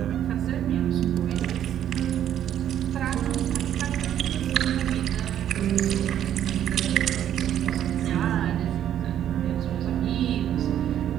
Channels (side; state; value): left; quieter; 10.6 dB